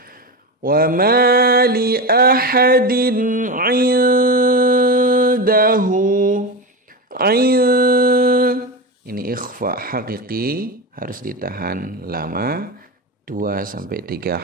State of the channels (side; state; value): both; normal; correlation 0.20